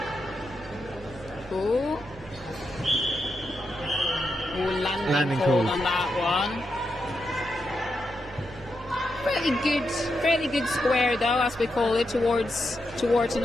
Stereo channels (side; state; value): both; normal; correlation 0.85